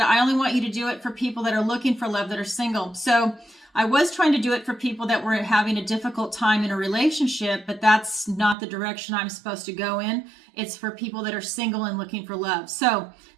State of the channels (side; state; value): left; drops out; at 8.6 s